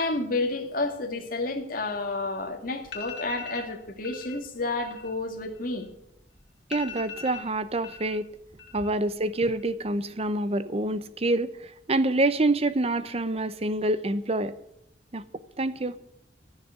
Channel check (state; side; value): normal; both; correlation 0.29